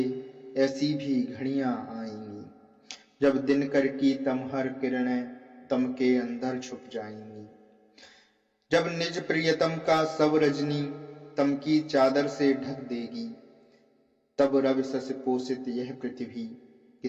ऐसी भी घड़ियां आएंगी जब दिनकर की तमहर किरणें तम के अंदर छुप जाएंगी। जब निज प्रियतम का सब रजनी तम की चादर से ढक देगी। तब रवि सस पोषित यह पृथ्वी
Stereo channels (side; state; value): both; identical; correlation 1.00